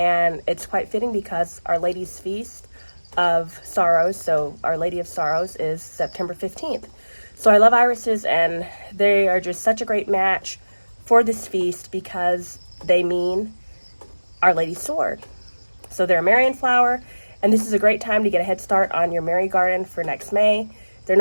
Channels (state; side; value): inverted; both; correlation -1.00